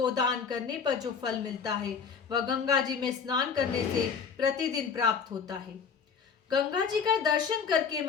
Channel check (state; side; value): quieter; right; 6.1 dB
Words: करने पर जो फल मिलता है, वह गंगा जी में स्नान करने से प्रतिदिन प्राप्त होता है। गंगा जी का दर्शन करके